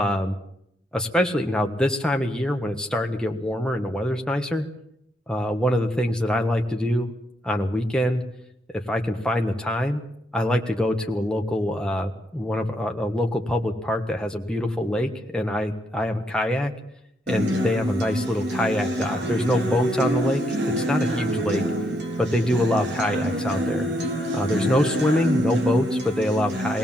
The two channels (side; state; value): both; normal; correlation 0.77